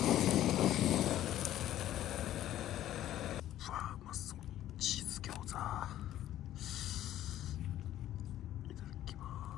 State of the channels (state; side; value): quieter; right; 12.8 dB